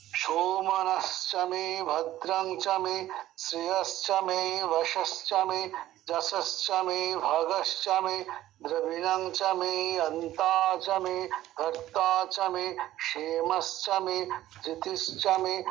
सोमनश्च मे भद्रं च मे श्रेयश्च मे वशश्च मे जशश्च मे भगश्च मे द्रविणं च मे अन्ता च मे कर्ता च मे क्षेमश्च मे धृतिश्च मे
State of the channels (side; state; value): left; quieter; 14.1 dB